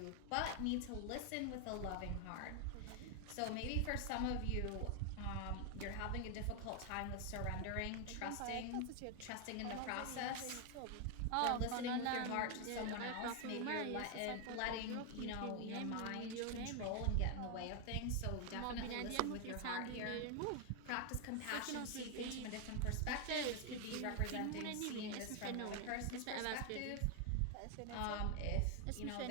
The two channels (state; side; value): different; both; correlation 0.01